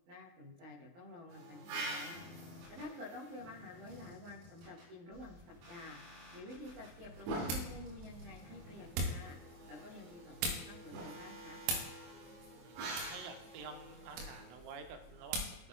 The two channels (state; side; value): late; left; 24 ms